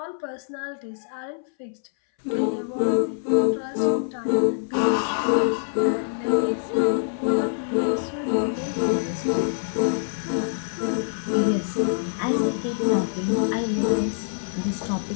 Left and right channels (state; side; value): silent; right; 62 dB below the other